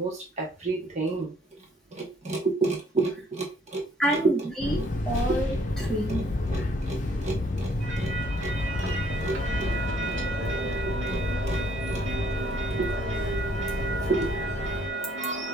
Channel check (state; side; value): normal; both; correlation 0.63